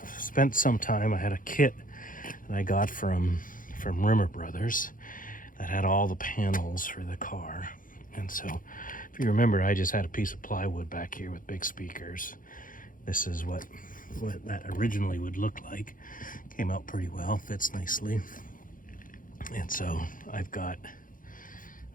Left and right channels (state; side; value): late; right; 0.40 ms